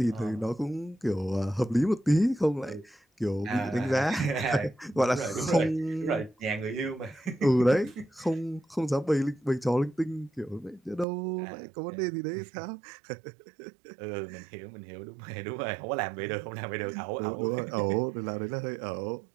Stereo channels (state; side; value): drops out; left; at 11.1 s